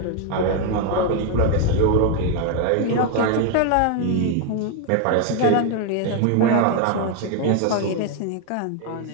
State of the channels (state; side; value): different; both; correlation 0.01